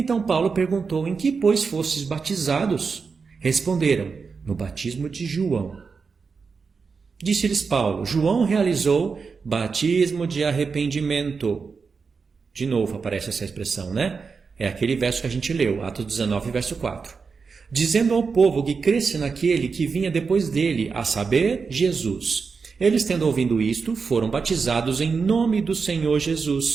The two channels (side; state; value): left; quieter; 5.1 dB